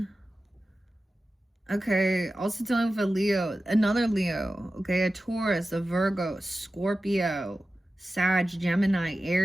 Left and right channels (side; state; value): both; normal; correlation 0.94